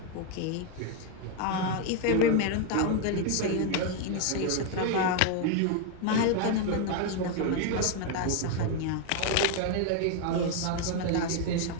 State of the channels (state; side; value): different; both; correlation 0.01